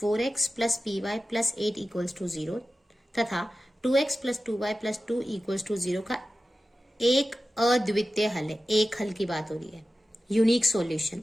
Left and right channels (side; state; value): both; normal; correlation 0.94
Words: + py + 8 = 0 तथा 2x + 2y + 2 = 0 का एक अद्वितीय हल है। एक हल की बात हो रही है, unique solution,